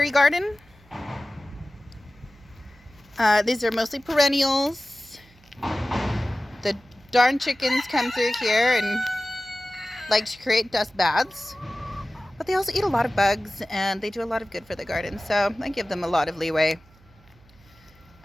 garden. These are mostly perennials. The darn chickens come through here and like to create dust baths, but they also eat a lot of bugs and they do a lot of good for the garden, so I give them a lot of leeway.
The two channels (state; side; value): noise; right; hum, 28 dB below the sound